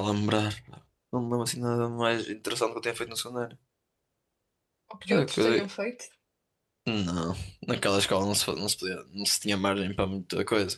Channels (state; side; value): identical; both; correlation 1.00